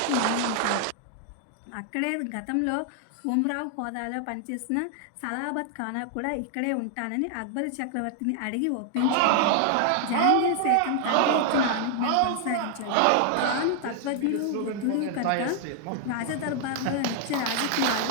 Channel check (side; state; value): both; different; correlation 0.00